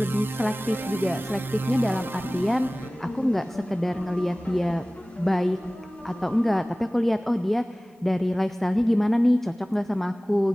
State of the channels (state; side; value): normal; both; correlation 0.98